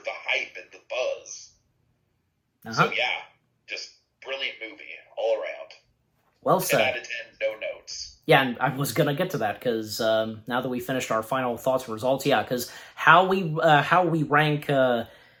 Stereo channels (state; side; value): identical; both; correlation 1.00